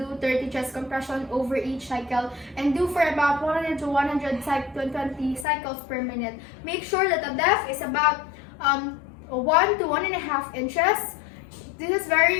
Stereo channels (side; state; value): right; drops out; at 5.5 s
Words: do 30 chest compression over each cycle and do for about 100 to 120 cycles per minute. Make sure that the depth is about 1 to 1.5 inches. This is very